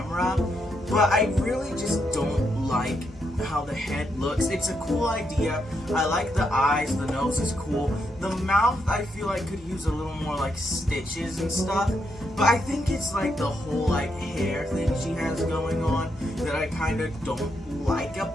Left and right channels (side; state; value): both; normal; correlation 0.79